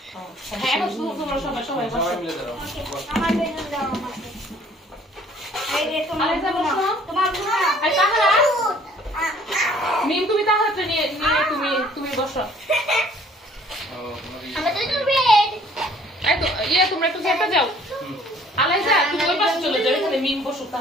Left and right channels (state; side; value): normal; both; correlation 0.57